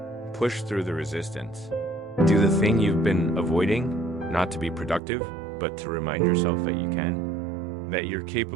Push through the resistance. Do the thing you've been avoiding, not to be productive, but to remind yourself that you can. That you're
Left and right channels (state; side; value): drops out; left; at 5.0 s